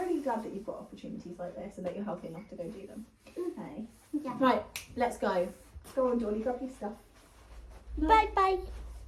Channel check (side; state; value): both; identical; correlation 1.00